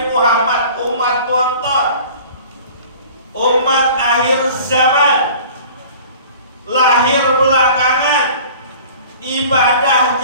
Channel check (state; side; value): inverted; both; correlation -0.45